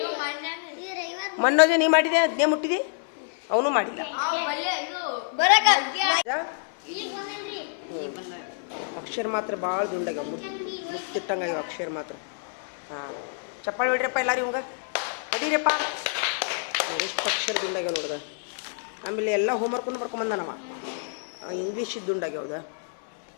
ಮನ್ನೋಜ ನೀ ಮಾಡಿದೆ ಜ್ಞಾ ಮುಟ್ಟಿದಿ ಅವನು ಮಾಡಿಲ್ಲ ಅಕ್ಷರ ಮಾತ್ರ ಭಾಳ ದುಂಡಾಗ್ಯಾವ ಮುತ್ತಿಟ್ಟಂಗಾಗ್ಯಾವ ಅಕ್ಷರ ಮಾತ್ರ ಹಾಂ ಚಪ್ಪಾಳಿ ಹೊಡ್ರಿಯಪ್ಪ ಎಲ್ಲಾರು ಇವಂಗ ಹೊಡೀರಪ್ಪ ಎಷ್ಟು ಅಕ್ಷರ ದುಂಡಾಗ್ಯಾವ ನೋಡ್ದ ಆಮೇಲೆ ಎಲ್ಲ ಹೋಮ್ವರ್ಕನ್ನು ಬರ್ಕೊಂಬಂದನವ ಇಂಗ್ಲೀಷ್ ದುಂಡಾಗ್ಯಾವ್ದ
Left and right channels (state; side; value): silent; right; 60 dB below the other